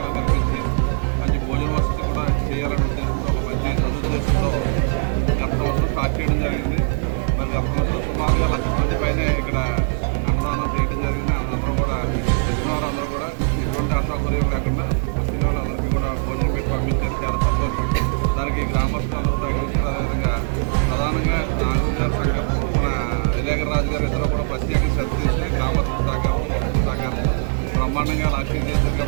కల్పించి మంచి భోజన వసతి కూడా చేయాలని ఉద్దేశంతో ఒక మంచి సదుద్దేశంతో గత సంవత్సరం స్టార్ట్ చేయడం జరిగింది. మరి గత సంవత్సరం సుమారుగా 1,00,000 మంది పైన ఇక్కడ అన్నదానం చేయడం జరిగింది. అందరూ కూడా వచ్చిన వారందరూ కూడా ఎటువంటి అసౌకర్యం లేకుండా వచ్చిన వాళ్ళందరికీ కూడా భోజనం పెట్టి పంపించారు. చాలా సంతోషం. దానికి గ్రామస్తులందరూ తగ్గించారు. అదేవిధంగా ప్రధానంగా నాగు గారి సంఘం, మన వివేకరాజు గారు ఇద్దరు కూడా ప్రత్యేక శ్రద్ధ తీసుకుని గ్రామస్తుల సహకారం, భక్తుల సహకారం బ్రహ్మాండంగా లాక్షన్ చేశారు.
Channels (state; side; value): silent; left; digital silence